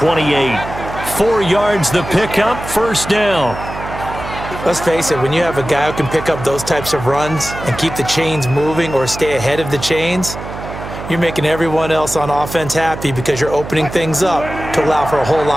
4 yards the pickup, 1st down. Let's face it, when you have a guy who can pick up those types of runs and keep the chains moving or stay ahead of the chains, you're making everyone else on offense happy because you're opening things up to allow for a whole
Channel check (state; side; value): noise; right; hum, 10 dB below the sound